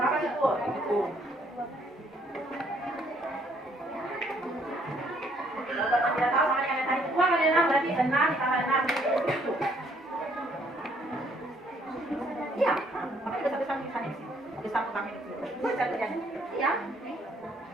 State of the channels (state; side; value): normal; both; correlation 0.66